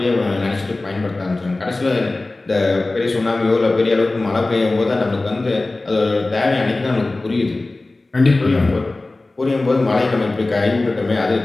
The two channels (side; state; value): right; quieter; 3.1 dB